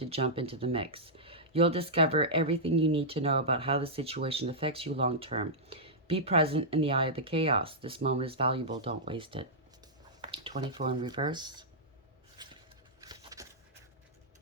jump into the mix. You'll discover everything you need to know about how the situation affects you long term. Be present in the eye of the chaos. This moment is valuable. Don't waste it. 24 in reverse.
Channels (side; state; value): both; normal; correlation -0.10